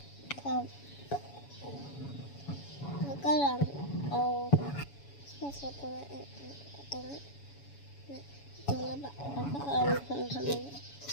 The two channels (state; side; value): late; right; 7.1 ms